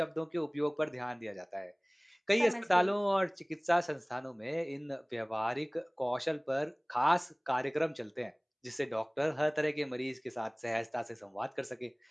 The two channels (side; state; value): both; identical; correlation 1.00